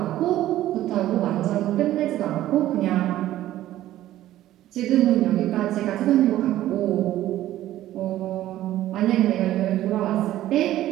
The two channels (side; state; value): left; quieter; 13.9 dB